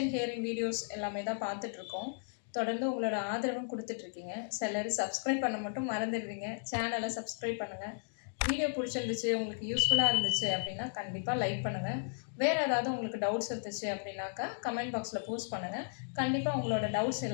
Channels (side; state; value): right; silent; digital silence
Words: ஹியரிங் வீடியோஸ் எல்லாமே தான் பார்த்துட்ருக்கோம். தொடர்ந்து உங்களோட ஆதரவும் கொடுத்துட்ருக்கீங்க. சிலர் சப்ஸ்கிரைப் பண்ண மட்டும் மறந்துடுவீங்க. சேனலை சப்ஸ்கிரைப் பண்ணுங்கள். வீடியோ பிடிச்சிருந்துச்சு, உங்களுக்கு யூஸ்ஃபுல்லாக இருந்துச்சு அப்படின்னா கண்டிப்பாக லைக் பண்ணுங்கள். வேறு ஏதாவது உங்களுக்கு டவுட்ஸ் இருந்துச்சு அப்படின்னாக்கா கமெண்ட் பாக்ஸில் போஸ்ட் பண்ணுங்கள். கண்டிப்பாக உங்களோட டவுட்ஸ்